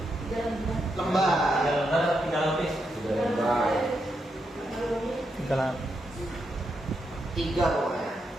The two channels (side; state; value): both; normal; correlation 0.82